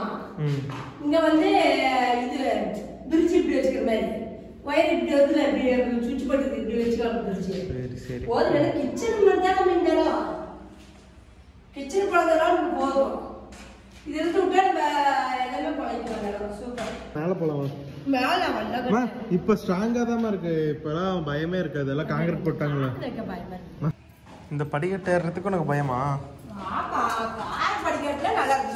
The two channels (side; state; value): both; identical; correlation 1.00